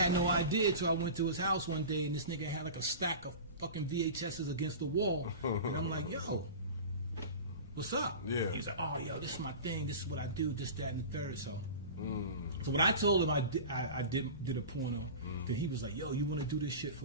no idea till I went to his house one day, and this nigga had like a stack of fucking VHSs against the wall, and I'm like, yo, what's up? Yeah. He was like, oh, yo, this is my thing. This is what I do. This, that, and the third. So when I told him I did a porno, then he was like, yo, you want to do this shit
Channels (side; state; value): both; inverted; correlation -0.33